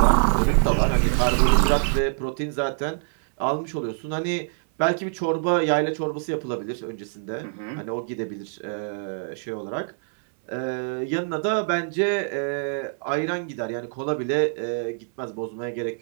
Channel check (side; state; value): left; silent; 62 dB below the other